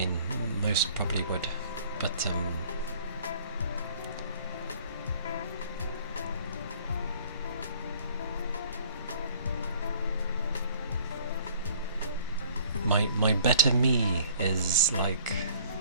most probably would, but, my better me is like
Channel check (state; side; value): inverted; both; correlation -0.55